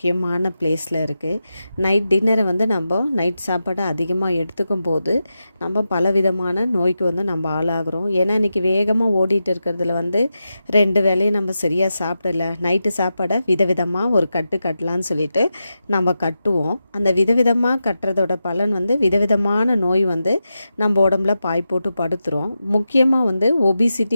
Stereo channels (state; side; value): inverted; both; correlation -0.90